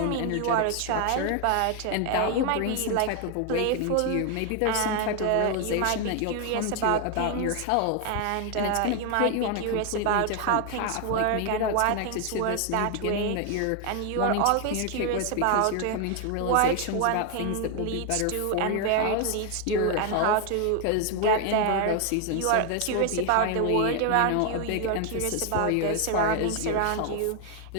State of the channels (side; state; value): both; different; correlation 0.01